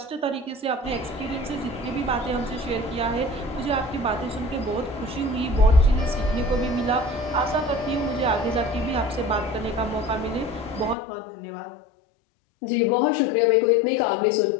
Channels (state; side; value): drops out; right; at 11.0 s